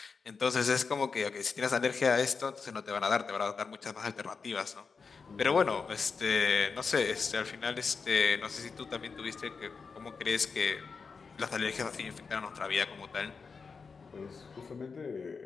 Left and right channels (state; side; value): quieter; right; 5.1 dB